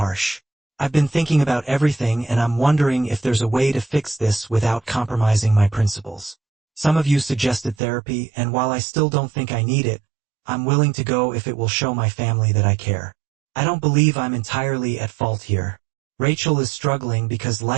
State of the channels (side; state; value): left; drops out; at 7.8 s